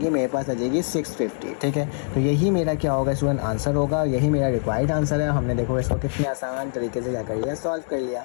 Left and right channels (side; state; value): right; silent; digital silence